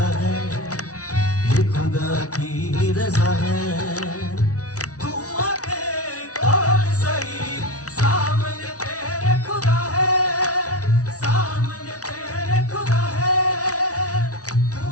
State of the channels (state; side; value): late; right; 0.67 ms